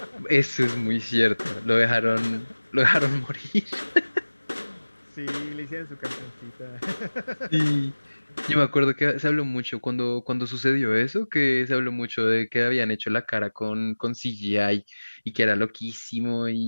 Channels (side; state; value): both; inverted; correlation -1.00